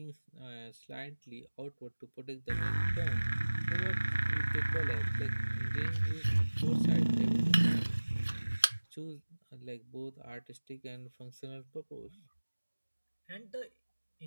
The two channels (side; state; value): both; inverted; correlation -1.00